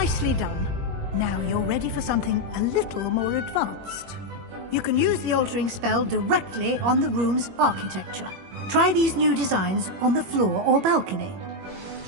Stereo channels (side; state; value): left; late; 21 ms